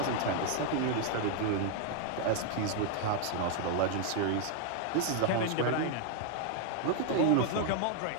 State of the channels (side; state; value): both; different; correlation 0.00